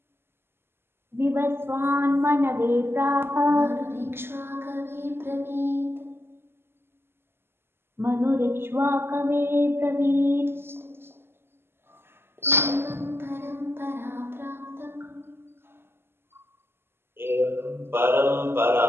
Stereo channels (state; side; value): late; left; 0.11 ms